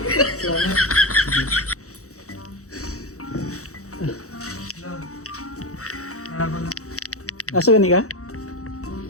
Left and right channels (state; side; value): late; right; 0.65 ms